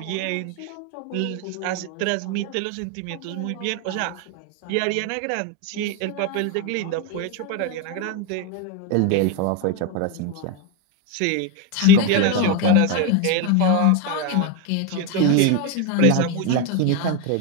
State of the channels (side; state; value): both; different; correlation 0.02